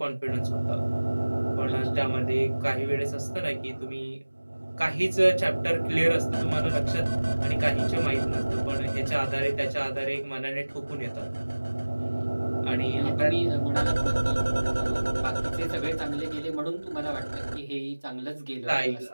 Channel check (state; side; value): inverted; both; correlation -1.00